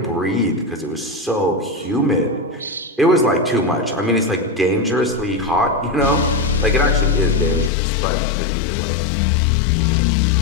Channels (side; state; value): right; drops out; at 7.7 s